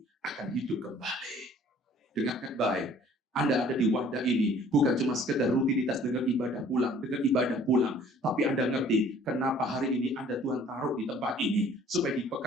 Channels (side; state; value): both; normal; correlation 0.54